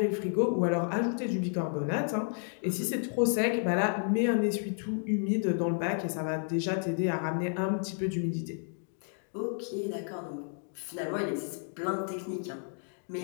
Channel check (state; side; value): silent; right; 57 dB below the other